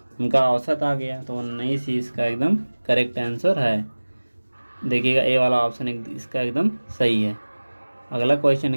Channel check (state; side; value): inverted; both; correlation -1.00